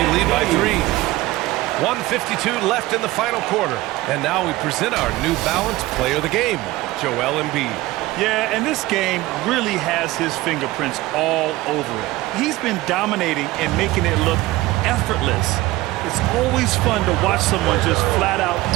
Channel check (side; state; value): left; quieter; 18.4 dB